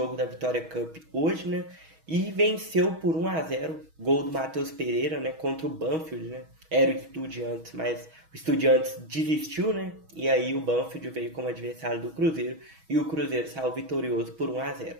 da Vitória Cup hoje, né, e venceu por 1-0, gol do Matheus Pereira, né, contra o Banfield, né. Era o Estudiantes, mas o Estudiantes desistiu, né, e aí o Banfield veio como adversário do Cruzeiro e o Cruzeiro saiu vitorioso por 1-0.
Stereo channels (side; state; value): left; late; 6.2 ms